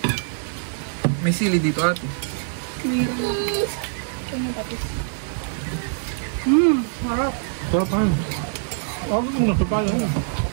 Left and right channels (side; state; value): left; silent; digital silence